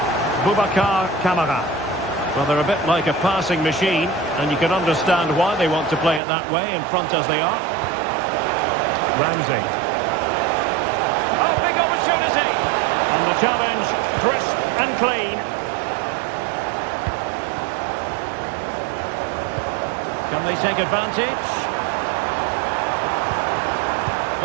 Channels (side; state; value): left; drops out; at 6.2 s